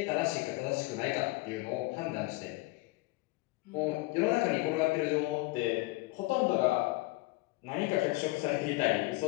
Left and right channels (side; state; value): right; quieter; 21.6 dB